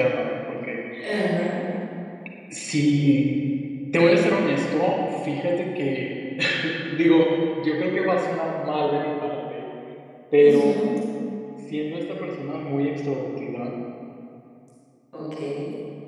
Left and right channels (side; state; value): both; identical; correlation 1.00